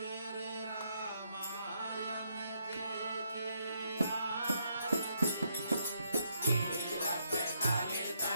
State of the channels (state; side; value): inverted; both; correlation -0.75